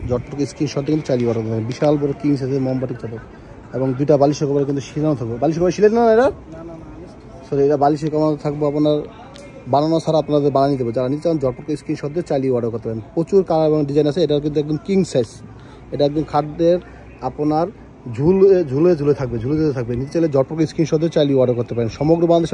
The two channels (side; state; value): both; identical; correlation 1.00